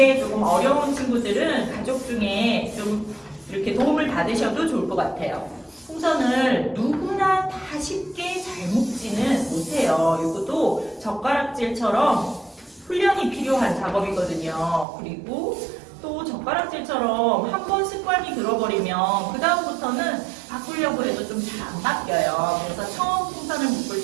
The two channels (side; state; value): left; drops out; at 14.9 s